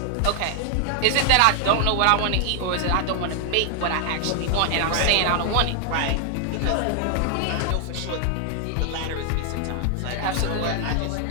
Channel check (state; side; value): different; both; correlation 0.00